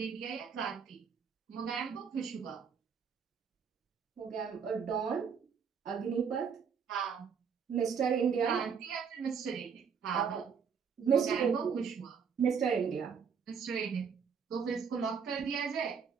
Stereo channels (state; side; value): quieter; left; 6.6 dB